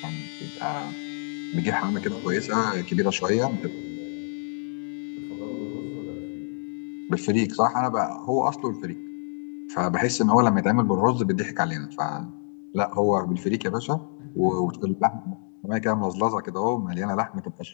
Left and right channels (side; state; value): right; silent; 60 dB below the other